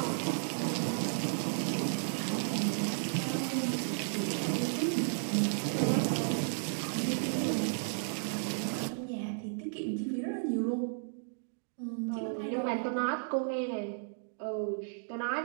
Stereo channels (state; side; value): silent; left; digital silence